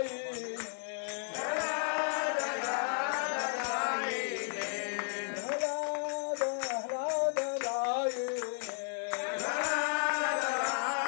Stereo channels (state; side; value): silent; right; 55 dB below the other